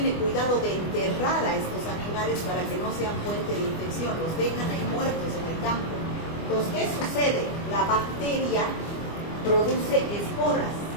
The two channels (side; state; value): right; late; 25 ms